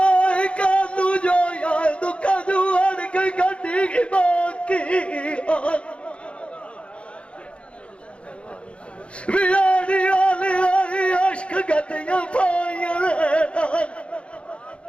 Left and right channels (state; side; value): late; right; 0.059 ms